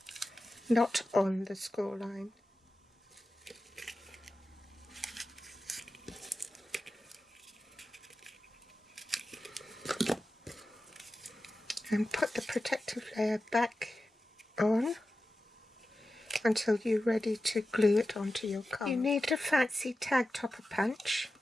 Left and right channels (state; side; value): normal; both; correlation 0.93